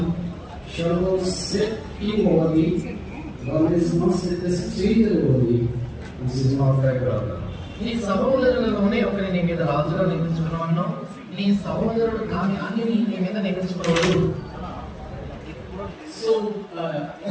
shall thou set king over thee. Thou mayest not set a stranger over thee, which is not thy brother. నీ సహోదరులలోనే ఒకరిని నీ మీద రాజుగా నియమించుకున్నాను. నీ సహోదరుడు కాని అన్నిని నీ మీద నియమించుకోవద్దు. So,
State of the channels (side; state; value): both; identical; correlation 1.00